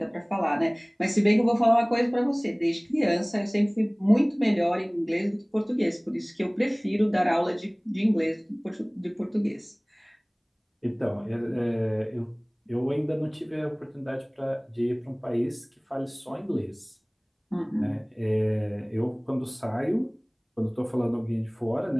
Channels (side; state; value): both; identical; correlation 1.00